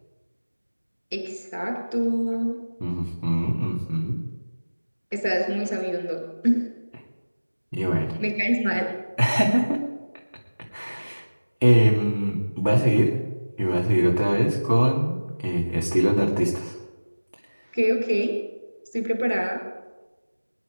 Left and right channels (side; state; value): both; inverted; correlation -1.00